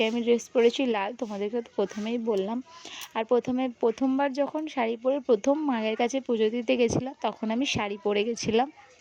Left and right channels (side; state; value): both; identical; correlation 1.00